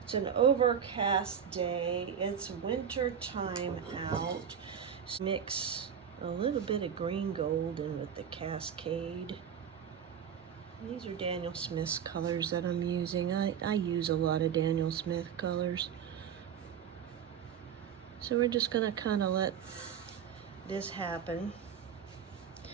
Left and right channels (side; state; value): left; quieter; 8.1 dB